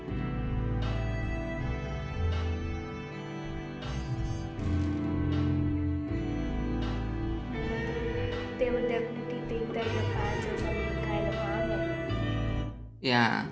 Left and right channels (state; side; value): identical; both; correlation 1.00